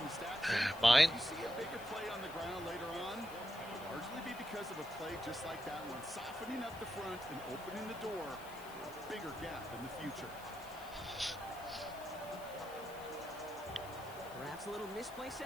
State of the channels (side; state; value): left; noise; hiss, 18 dB below the sound